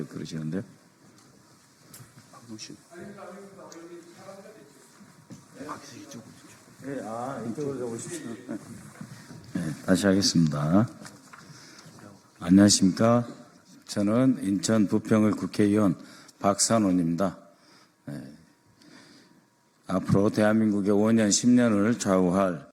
그러시는데요. 네, 이쪽으로 오십시오. 네, 다시 하겠습니다. 안녕하십니까? 저는 인천 부평을 국회의원 박선원입니다. 네. 앞으로 대한민국의 5년, 10년을 좌우할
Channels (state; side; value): identical; both; correlation 1.00